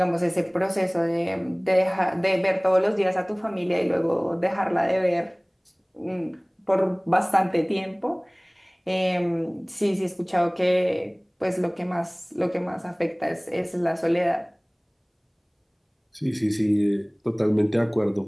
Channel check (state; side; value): identical; both; correlation 1.00